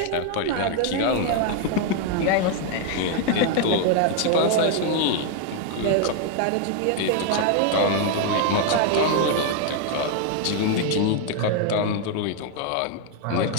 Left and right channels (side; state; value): both; different; correlation 0.00